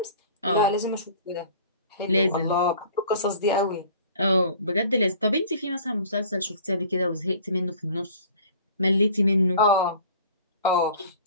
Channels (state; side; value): inverted; both; correlation -0.47